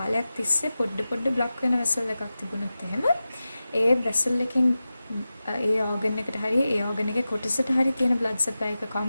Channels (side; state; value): both; inverted; correlation -0.94